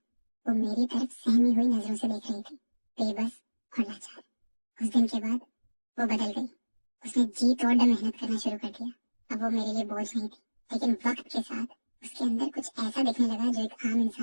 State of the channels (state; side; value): inverted; both; correlation -1.00